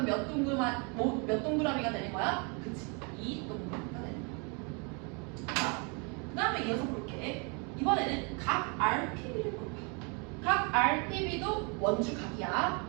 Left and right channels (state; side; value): quieter; left; 33.8 dB